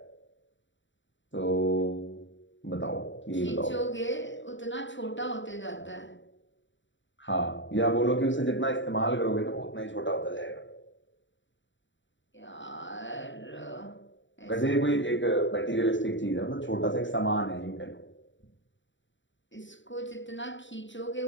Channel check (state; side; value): late; right; 0.54 ms